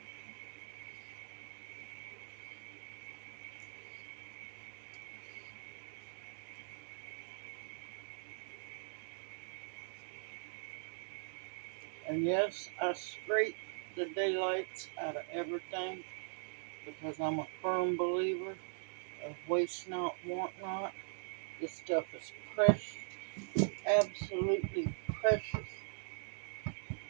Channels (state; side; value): silent; left; digital silence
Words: And yes, I scrape the daylights out of everything because I'm a firm believer of waste not, want not. This stuff is precious, absolutely precious.